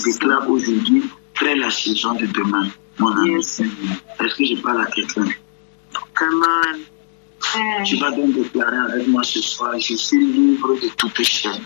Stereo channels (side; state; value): right; silent; digital silence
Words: aujourd'hui crée la saison de demain, mon ami. Est-ce que je parle à quelqu'un? Amen. Tu vas donc déclarer avec moi ce soir, je suis libre de toute chaîne.